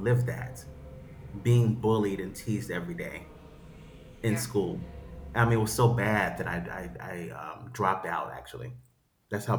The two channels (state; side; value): identical; both; correlation 1.00